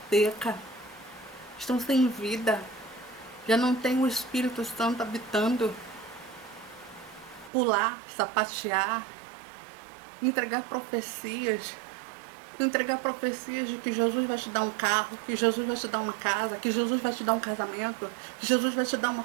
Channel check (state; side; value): drops out; left; at 7.5 s